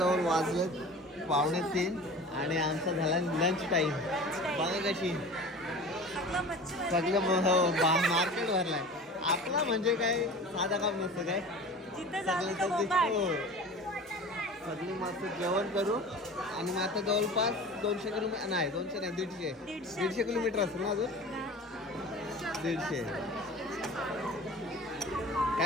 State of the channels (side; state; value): both; normal; correlation 0.38